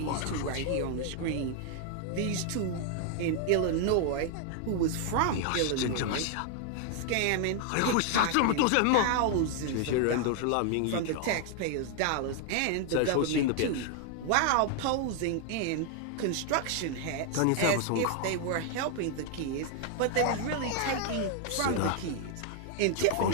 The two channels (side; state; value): both; different; correlation 0.00